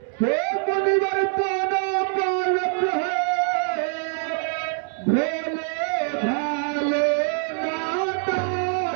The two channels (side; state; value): left; silent; 63 dB below the other